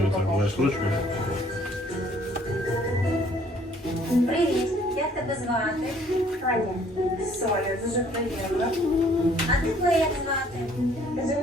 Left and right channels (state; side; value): normal; both; correlation 0.60